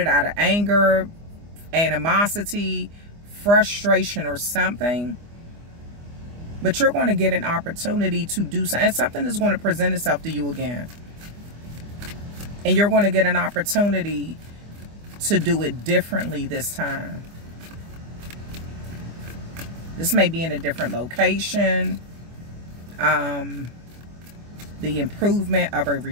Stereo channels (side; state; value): left; late; 25 ms